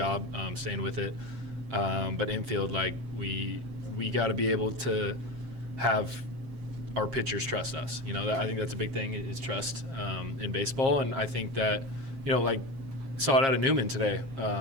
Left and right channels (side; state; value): left; late; 7.5 ms